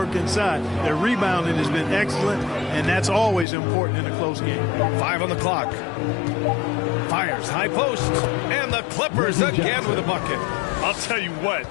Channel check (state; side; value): drops out; right; at 3.5 s